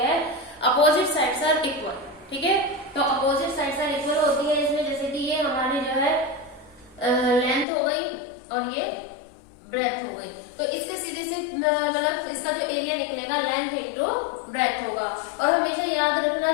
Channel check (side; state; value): right; drops out; at 7.7 s